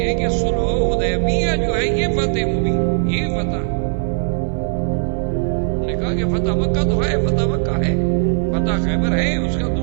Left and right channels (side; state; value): left; silent; 56 dB below the other